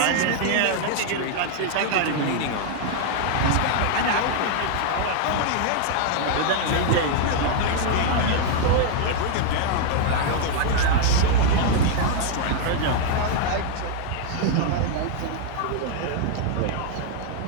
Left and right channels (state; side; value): different; both; correlation 0.00